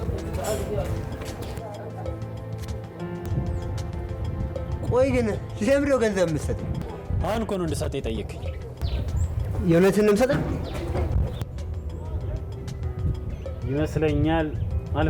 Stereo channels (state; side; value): identical; both; correlation 1.00